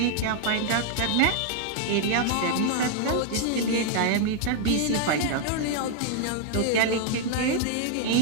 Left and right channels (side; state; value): both; different; correlation 0.00